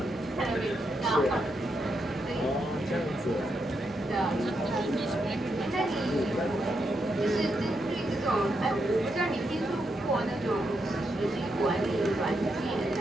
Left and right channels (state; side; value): noise; left; rumble, 27 dB below the sound